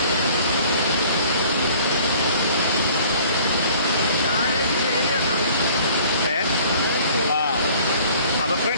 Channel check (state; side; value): inverted; both; correlation -0.52